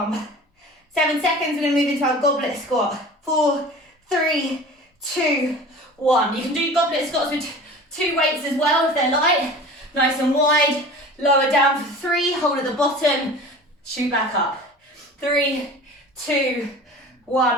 7 seconds, we're going to move into our goblet squat. 4, 3, 2, 1. You can do goblet squats with 2 weights as well if they're light. Nice and wide. Lower down for 3, hold at the bottom, shoot back up. 3, 2,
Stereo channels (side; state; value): both; normal; correlation 0.39